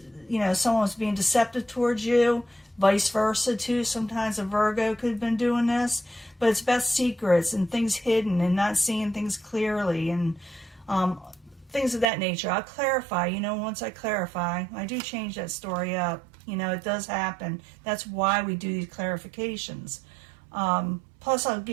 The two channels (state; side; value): drops out; left; at 12.1 s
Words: you know, someone was being deceptive towards you. Vice versa, too. Sometimes a Virgo could have been doing this. But it's about secrets and things hidden and not seeing things clearly and things of that nature. I'll clarify, you know, once I clarify, I do change that story up. You know, it does happen. That's why we do these clarifications. Plus, I'll